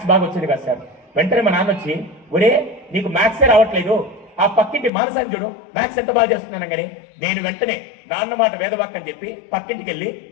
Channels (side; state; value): right; drops out; at 4.9 s